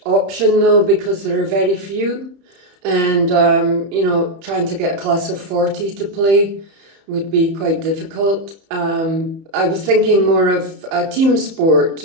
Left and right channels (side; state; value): left; late; 31 ms